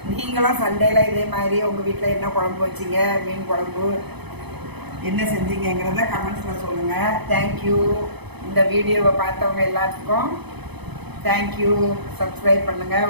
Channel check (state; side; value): late; left; 0.99 ms